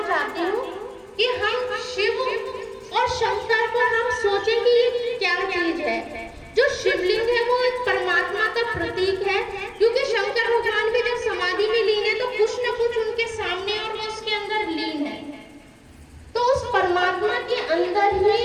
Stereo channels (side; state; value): both; identical; correlation 1.00